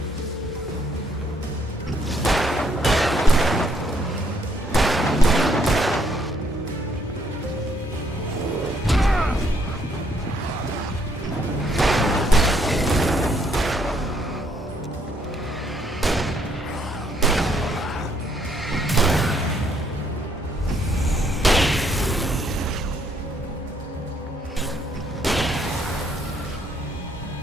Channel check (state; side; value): normal; both; correlation 0.69